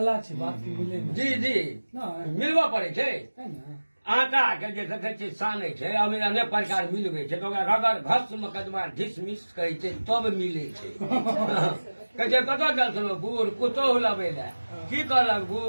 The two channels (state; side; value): inverted; both; correlation -1.00